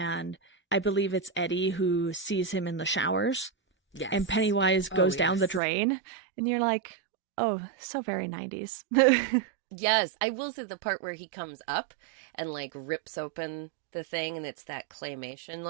I believe it's Eddie who sees him in the showers, and Yes. Pennywise Oh, goes down the yes. drain, and you're like, oh, so very 90s. Yes, I will say the part where he comes up and like rips open the thing and it's that claymation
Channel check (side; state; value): left; drops out; at 5.6 s